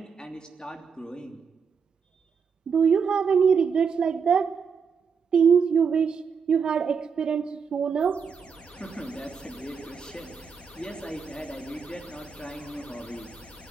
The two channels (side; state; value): left; quieter; 6.1 dB